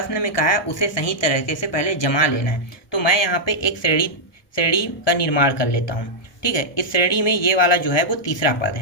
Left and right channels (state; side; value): late; right; 1.6 ms